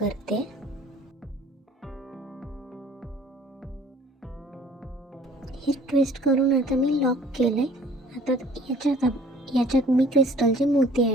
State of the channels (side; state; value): both; normal; correlation 0.53